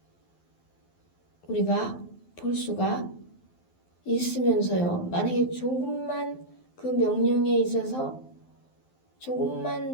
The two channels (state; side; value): late; right; 12 ms